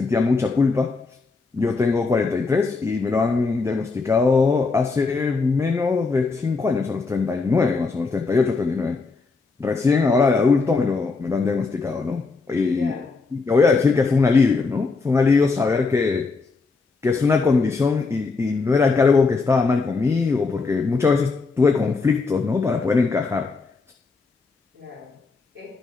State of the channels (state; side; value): quieter; right; 4.2 dB